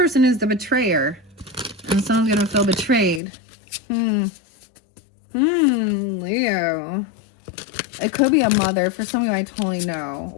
is the betrayer, and someone's gonna feel betrayed. Leo. It could be a mother. For some of you, I totally know,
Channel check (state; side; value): drops out; right; at 3.2 s